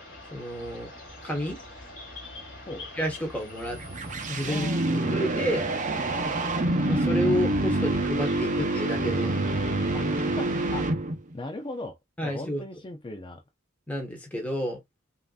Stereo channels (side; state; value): both; normal; correlation 0.58